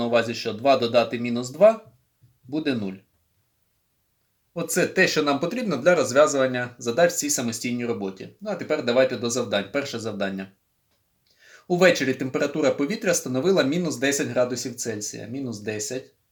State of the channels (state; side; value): identical; both; correlation 1.00